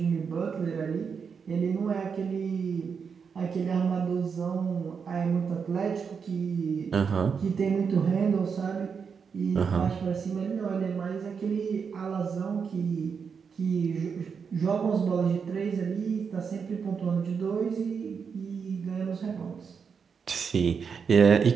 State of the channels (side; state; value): left; quieter; 6.1 dB